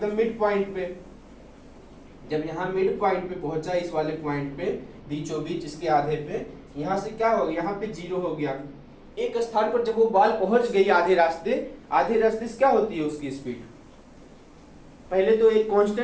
मिड पॉइंट पे। जब यहाँ मिड पॉइंट पे पहुंचा, इस वाले पॉइंट पे बीचों बीच, इसके आधे पे, यहाँ से क्या हो गया, यहाँ पे 0 हो गया। एक स्थान पर जब वो बॉल पहुंच गई आधे रास्ते से क्या होती है उसकी स्पीड, पहले तो एक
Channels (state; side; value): identical; both; correlation 1.00